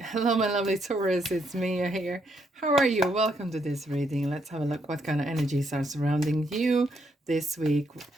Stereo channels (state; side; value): normal; both; correlation 0.75